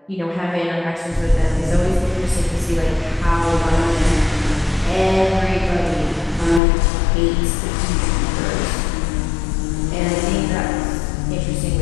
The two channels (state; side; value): drops out; right; at 6.6 s